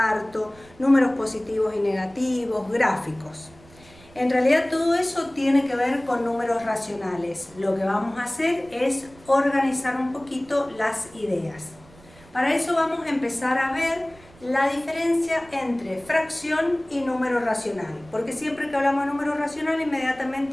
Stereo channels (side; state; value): right; noise; rumble, 24 dB below the sound